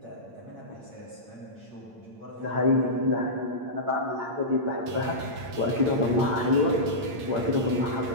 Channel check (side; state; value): left; late; 8.7 ms